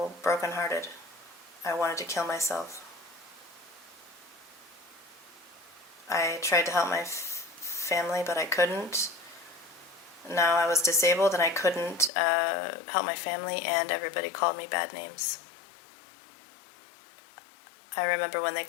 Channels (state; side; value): drops out; right; at 12.1 s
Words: brokenhearted. I wanted to kill myself. I tried to help my family, but I couldn't. Now I was disabled and I couldn't help my family, and everybody called me bad names. I remember when they